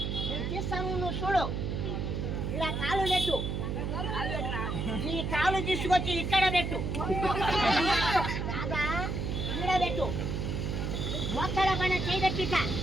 నేను తీస్తాను, నువ్వు చూడు. ఇలా కాలు పెట్టు. ఈ కాలు తీసుకొచ్చి ఇక్కడ పెట్టు. రాదా? ఇక్కడ పెట్టు. ఒక్కడ పైన చేయబెట్టిట.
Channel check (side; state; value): right; noise; hum, 2 dB below the sound